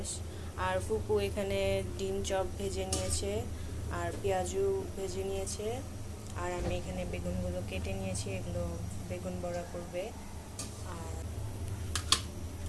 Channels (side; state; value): both; identical; correlation 1.00